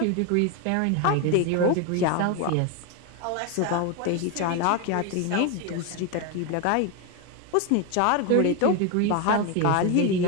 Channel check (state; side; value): different; both; correlation 0.02